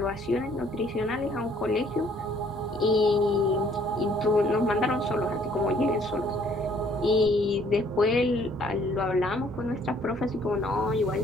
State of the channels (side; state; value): both; normal; correlation 0.61